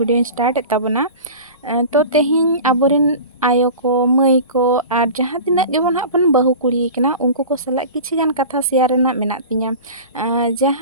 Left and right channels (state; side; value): inverted; both; correlation -0.35